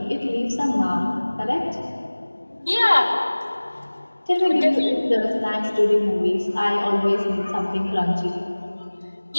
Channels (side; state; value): both; inverted; correlation -1.00